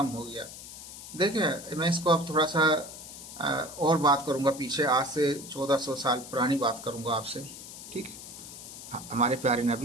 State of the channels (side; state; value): left; noise; hiss, 13 dB below the sound